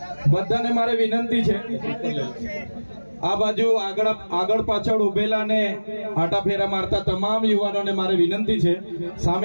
બધાને મારે વિનંતી છે, આ બાજુ આગળ પાછળ ઉભેલા ને આટા ફેરા મારતા તમામ યુવાનોને મારે વિનંતી છે,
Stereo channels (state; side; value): inverted; both; correlation -1.00